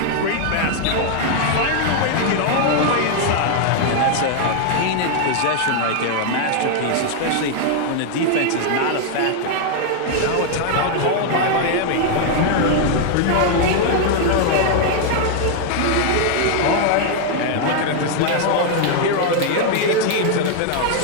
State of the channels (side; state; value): both; different; correlation 0.00